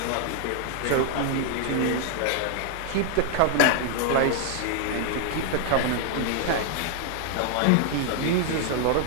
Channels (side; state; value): both; different; correlation 0.00